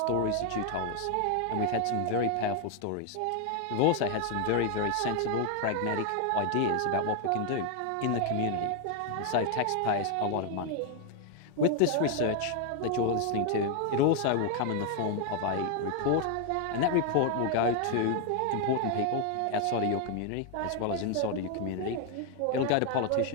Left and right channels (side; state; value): both; different; correlation 0.01